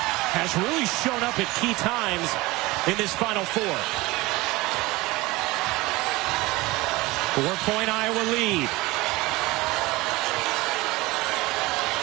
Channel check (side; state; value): left; quieter; 21.0 dB